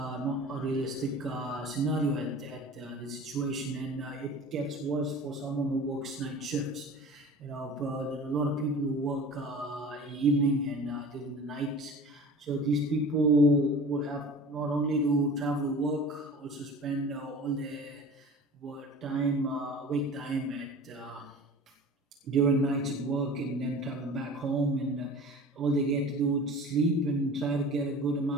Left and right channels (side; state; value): both; normal; correlation 0.40